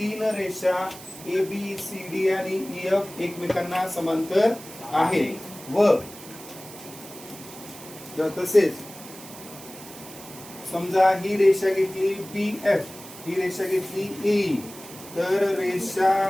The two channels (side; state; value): right; noise; hiss, 16 dB below the sound